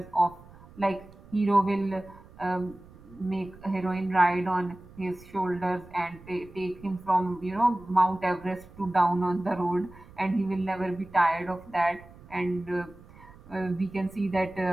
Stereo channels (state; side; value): noise; right; rumble, 21 dB below the sound